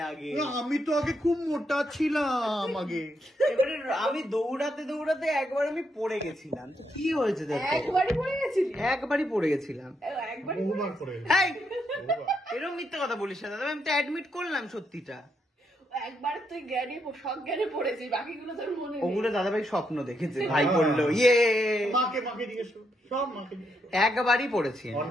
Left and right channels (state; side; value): normal; both; correlation 0.79